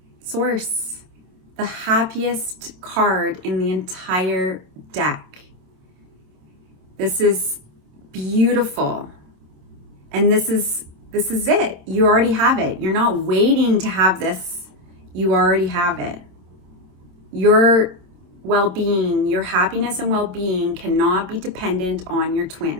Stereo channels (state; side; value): late; left; 27 ms